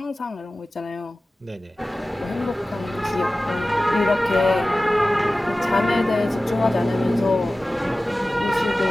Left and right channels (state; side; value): normal; both; correlation 0.96